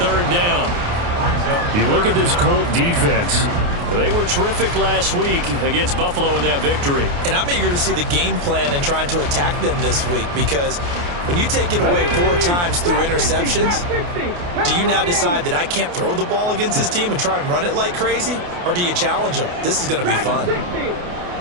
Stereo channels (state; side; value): late; left; 29 ms